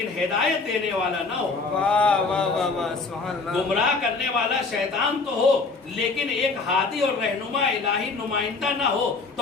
ہدایت دینے والا نہ ہو؟ واہ واہ واہ واہ سبحان اللہ۔ گمراہ کرنے والا شیطان تو ہو لیکن ایک ہادی اور رہنما الہی نمائندہ نہ ہو۔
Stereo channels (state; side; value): quieter; right; 4.1 dB